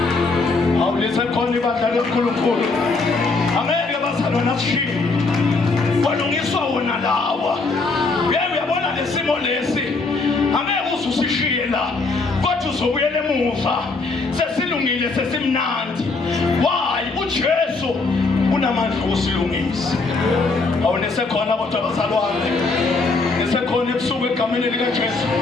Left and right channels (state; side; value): quieter; right; 3.8 dB